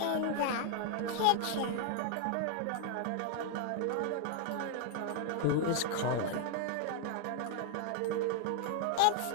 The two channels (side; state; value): both; different; correlation 0.00